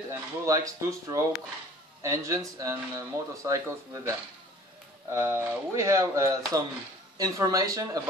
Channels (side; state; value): both; normal; correlation 0.49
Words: and who likes two-stroke engines and motorcycles with them. We have some information